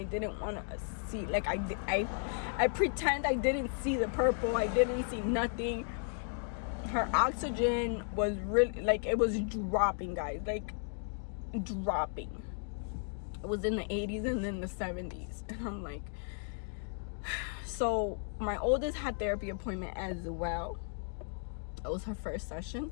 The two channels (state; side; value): silent; right; 55 dB below the other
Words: didn't want to see. Like, I pretend I didn't see the purple. I didn't see nothing. Her oxygen was really, like, it was dropping, guys. Like, dropping. It was in the 80s and then the 70s. And I'm like, so my oldest had therapy appointment as well. It was her first session.